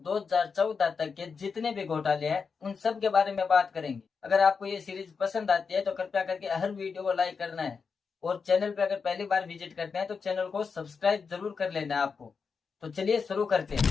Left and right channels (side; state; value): right; quieter; 5.4 dB